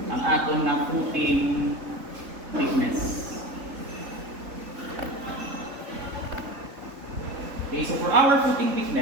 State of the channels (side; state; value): left; late; 3.7 ms